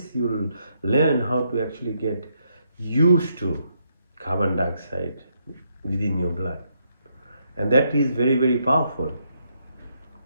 you'll learn how to actually get used to carbon dioxide within your blood. And that is very, very powerful.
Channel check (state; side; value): inverted; both; correlation -0.77